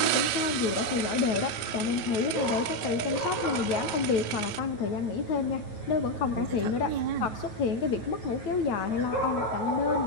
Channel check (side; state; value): right; late; 9.2 ms